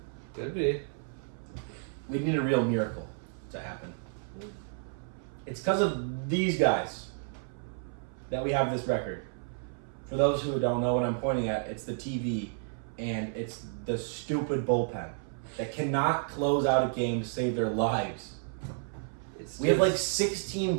Could be. We need a real miracle to happen. It's because of these guys that we have this record. For those who don't know what I'm pointing at, it's the TV and it's the stupid bullpen that cannot close out a game to save their lives. We have like 16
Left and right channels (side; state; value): left; silent; 57 dB below the other